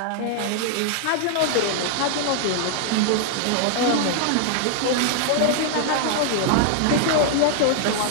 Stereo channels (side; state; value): both; different; correlation 0.00